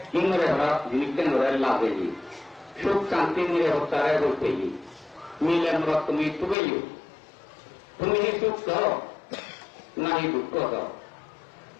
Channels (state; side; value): drops out; right; at 6.6 s